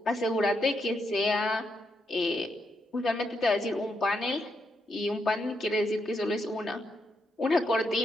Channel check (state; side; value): normal; both; correlation 0.81